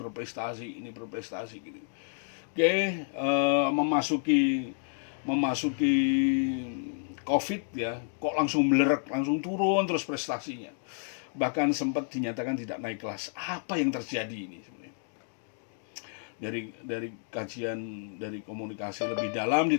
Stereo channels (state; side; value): silent; right; digital silence